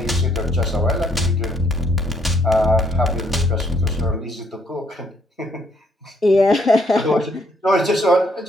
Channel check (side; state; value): both; normal; correlation 0.70